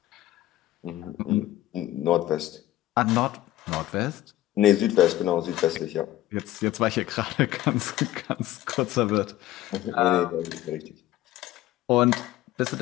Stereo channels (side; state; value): right; quieter; 14.7 dB